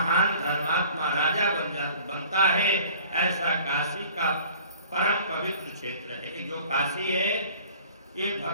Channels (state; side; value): inverted; both; correlation -0.49